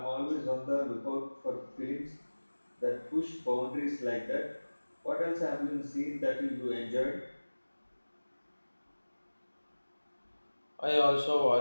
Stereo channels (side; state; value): both; inverted; correlation -1.00